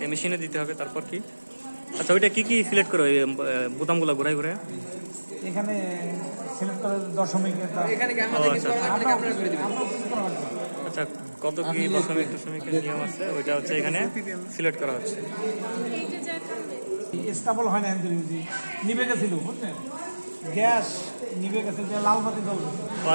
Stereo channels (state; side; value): inverted; both; correlation -1.00